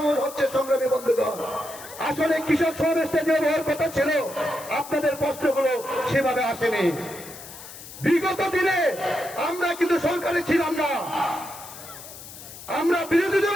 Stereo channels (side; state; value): left; noise; hiss, 15 dB below the sound